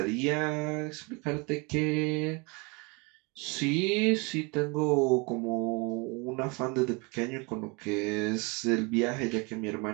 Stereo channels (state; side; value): quieter; left; 29.3 dB